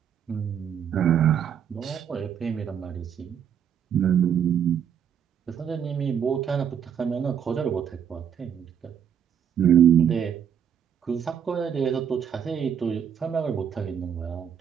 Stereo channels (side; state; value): left; quieter; 8.4 dB